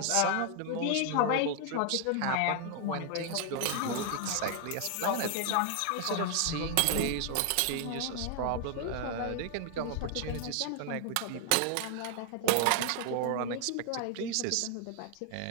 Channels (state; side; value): different; both; correlation 0.00